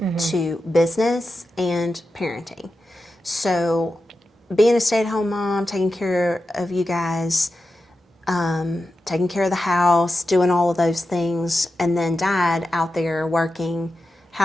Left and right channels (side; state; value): both; normal; correlation 0.90